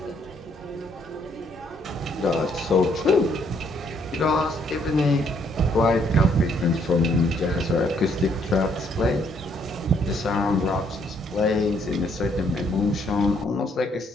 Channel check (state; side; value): normal; both; correlation 0.68